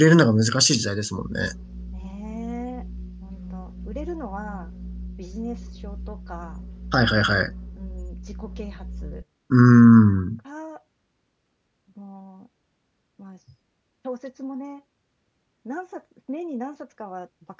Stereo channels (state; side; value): identical; both; correlation 1.00